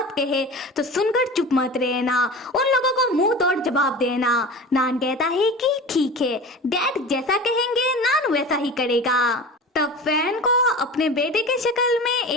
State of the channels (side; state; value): both; normal; correlation 0.34